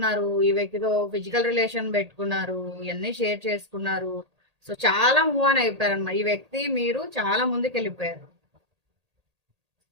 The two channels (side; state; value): left; late; 1.8 ms